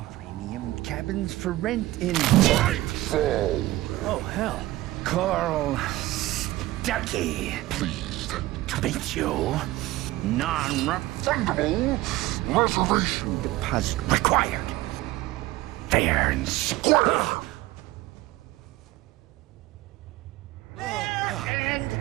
Premium cabins for rent in... Nightfall! Oh, hell. Carl Stuckey. Pleased to meet you. Non-refundable reservation deposit required. Fair and square.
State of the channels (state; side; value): quieter; left; 17.5 dB